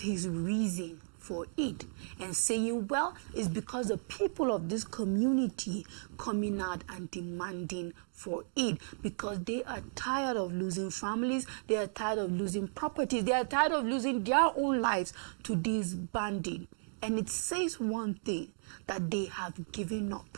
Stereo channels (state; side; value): silent; left; digital silence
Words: his reason for it, and saying, well, it's because the people of this community coming out and demanding for it, because they are tired of losing families, they are tired of losing properties, they are tired of losing their own lives to these bandits. And it says one thing, that they have given up.